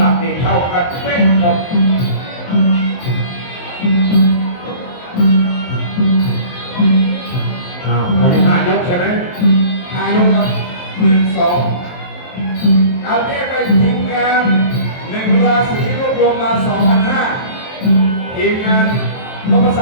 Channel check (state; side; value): late; right; 23 ms